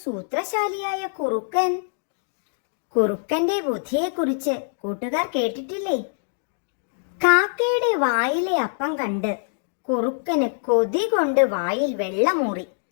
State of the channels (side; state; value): right; silent; digital silence